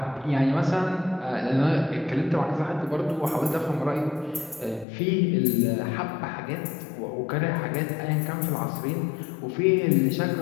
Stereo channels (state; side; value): drops out; right; at 4.9 s